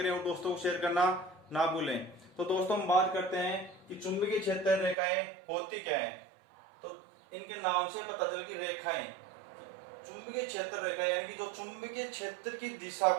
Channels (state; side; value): drops out; left; at 5.0 s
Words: और दोस्तों को शेयर करना ना भूलें। तो दोस्तों हम बात करते हैं कि चुंबकीय क्षेत्र रेखाएं होती क्या है। तो इनके नाम से पता चल कि रेखाएं चुंबकीय क्षेत्र रेखा यानी कि जो चुंबकीय क्षेत्र की दिशा